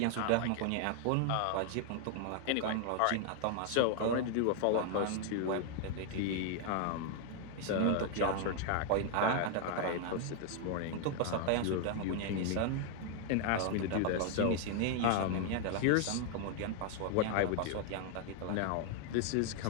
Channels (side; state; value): both; different; correlation 0.00